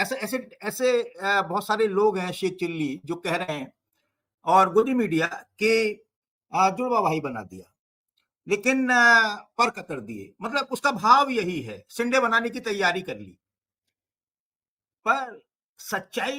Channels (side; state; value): both; identical; correlation 1.00